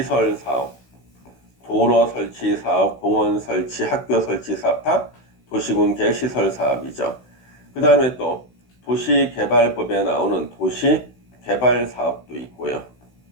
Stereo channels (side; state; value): right; late; 16 ms